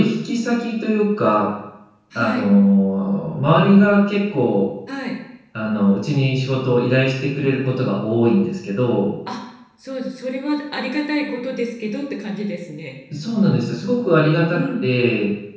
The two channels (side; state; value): both; identical; correlation 1.00